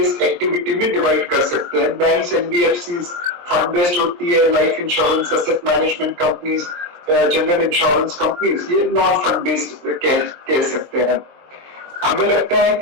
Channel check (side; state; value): left; late; 23 ms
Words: activity में डिवाइड कर सकते हैं। बैंक्स, एनबीएफसीज फंड बेस्ड होती है, life insurance, asset management companies, general insurance companies ये नॉन फंड बेस्ड कह सकते हैं। हमें लगता है